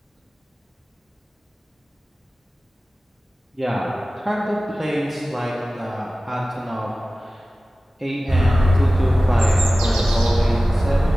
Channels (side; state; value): both; normal; correlation 0.96